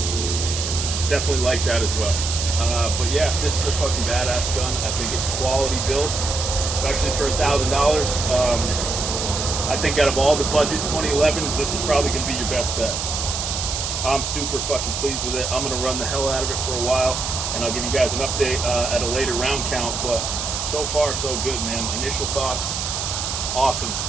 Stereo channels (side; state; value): right; noise; hiss, 3 dB below the sound